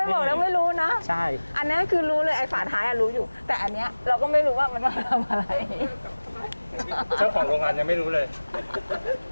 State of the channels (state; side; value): inverted; both; correlation -1.00